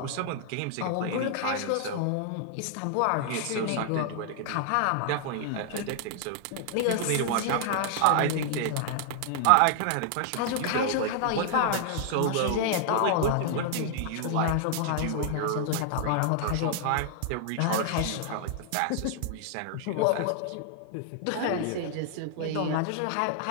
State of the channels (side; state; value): both; different; correlation -0.01